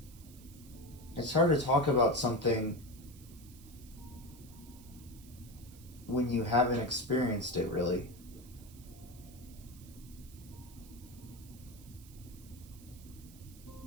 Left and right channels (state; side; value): noise; right; hiss, 21 dB below the sound